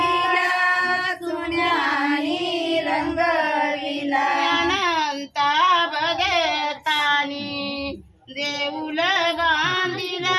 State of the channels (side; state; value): both; identical; correlation 1.00